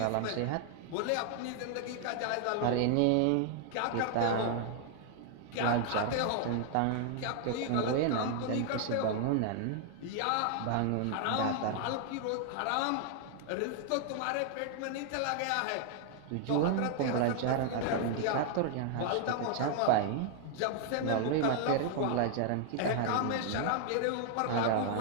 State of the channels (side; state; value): both; different; correlation 0.00